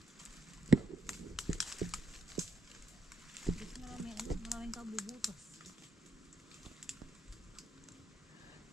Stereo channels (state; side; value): normal; both; correlation 0.82